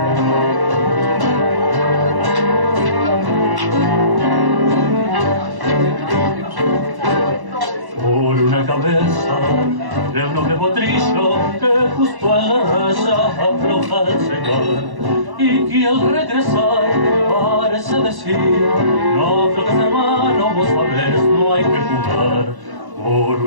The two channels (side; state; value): left; late; 1.1 ms